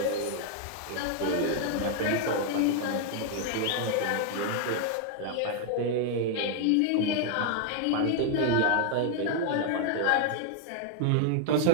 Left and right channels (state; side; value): different; both; correlation 0.00